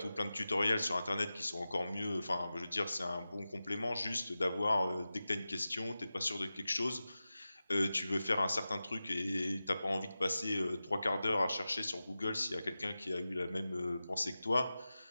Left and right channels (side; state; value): both; inverted; correlation -0.94